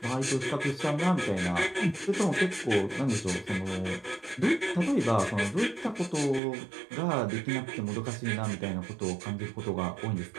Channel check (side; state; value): left; drops out; at 6.4 s